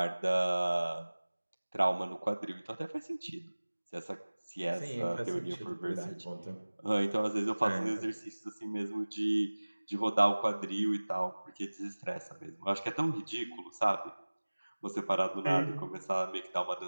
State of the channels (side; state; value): both; inverted; correlation -1.00